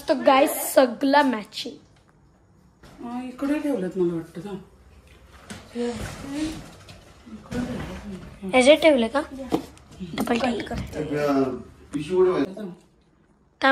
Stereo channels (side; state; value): both; identical; correlation 1.00